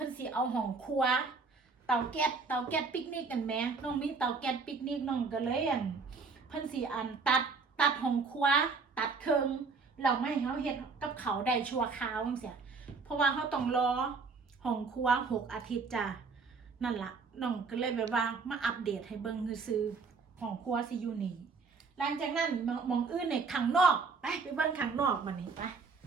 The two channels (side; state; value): left; quieter; 4.6 dB